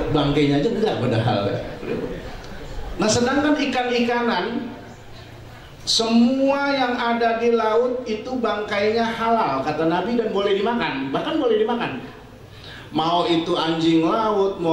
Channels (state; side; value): identical; both; correlation 1.00